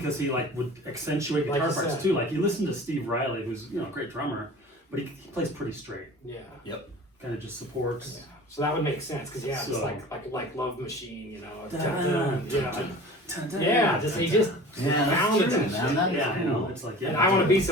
he like would accentuate Like guitar you parts said. too. Like you listen to Steve Riley, who's a great drummer, but he plays pretty straight. Yeah. Kind of just supports. Yeah. So that would make sense because it's So- like Love Machine, Dun, dun, dun, dun, dun, yeah, dun, just dun, he just Yeah, that's found it, true, and man. shit. That is Yeah, I know. It's like And I want to be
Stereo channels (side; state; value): both; normal; correlation 0.41